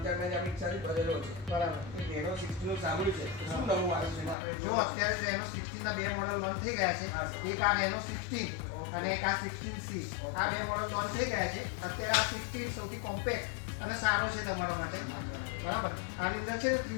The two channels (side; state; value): right; drops out; at 4.4 s